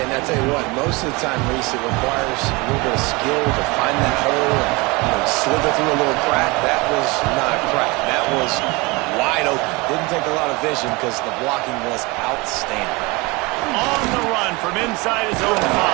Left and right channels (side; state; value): left; quieter; 25.2 dB